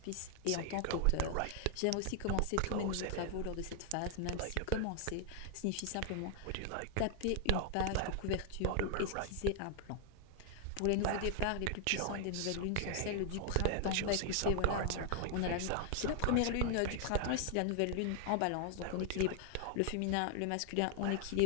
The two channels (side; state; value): both; different; correlation 0.00